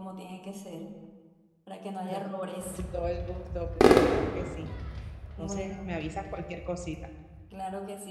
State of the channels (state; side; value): identical; both; correlation 1.00